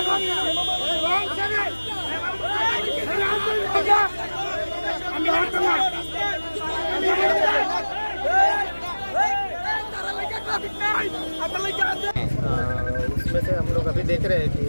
उसमें से हम लोग अभी देख रहे हैं कि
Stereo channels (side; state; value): both; inverted; correlation -1.00